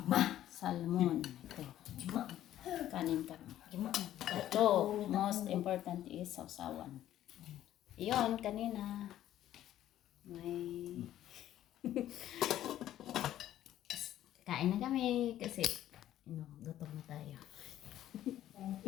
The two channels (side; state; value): right; quieter; 12.5 dB